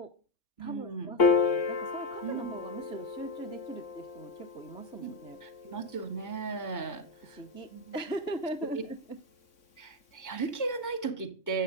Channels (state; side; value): late; right; 3.6 ms